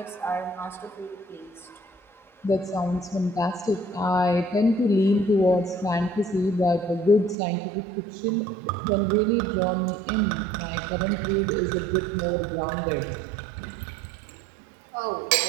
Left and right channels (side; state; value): left; drops out; at 7.4 s